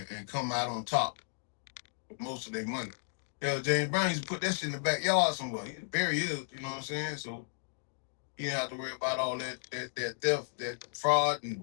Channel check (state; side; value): silent; right; digital silence